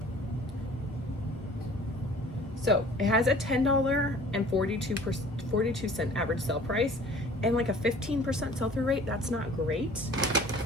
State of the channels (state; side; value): normal; both; correlation 0.49